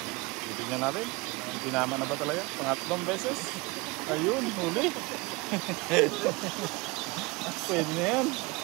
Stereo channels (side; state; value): left; quieter; 25.2 dB